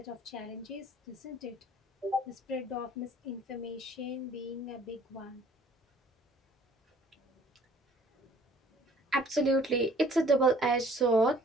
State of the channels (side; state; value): both; normal; correlation 0.55